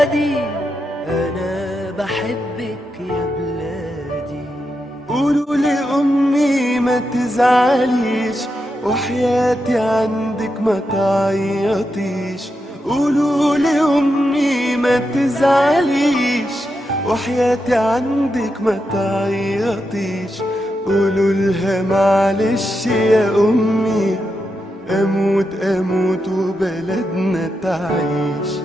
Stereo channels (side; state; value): both; normal; correlation 0.86